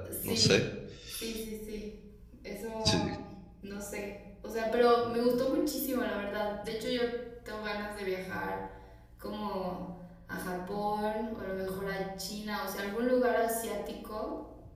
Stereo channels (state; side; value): identical; both; correlation 1.00